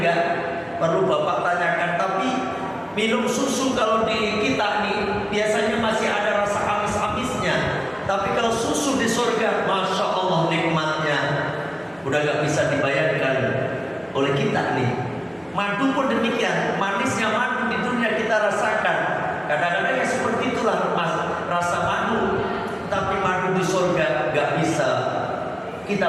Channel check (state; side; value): identical; both; correlation 1.00